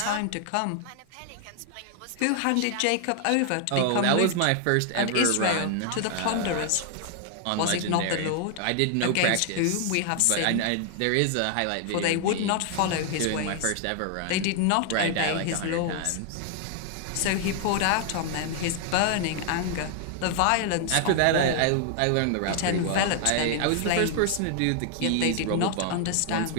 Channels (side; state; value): both; different; correlation 0.00